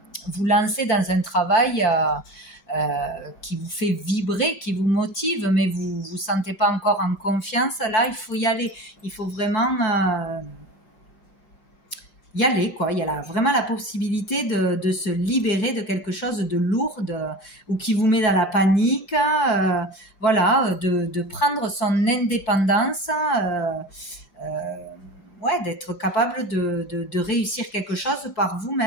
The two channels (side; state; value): right; late; 5.7 ms